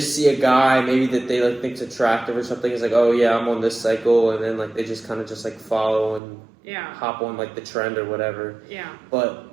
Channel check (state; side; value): drops out; left; at 6.2 s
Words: see a guy, maybe that they, like, think's attractive or something. It's like, oh, yeah, I'm on this cycle. And then, like, they just kind of just, like, follow and hop on, like, the trend or whatever. Yeah. But...